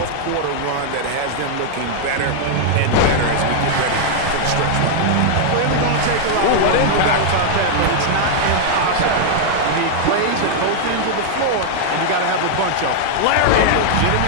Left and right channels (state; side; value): different; both; correlation -0.01